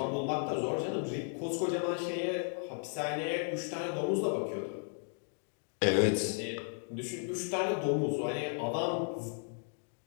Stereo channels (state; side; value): silent; right; 55 dB below the other